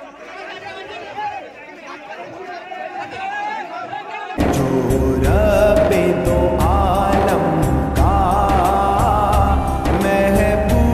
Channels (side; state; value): both; identical; correlation 1.00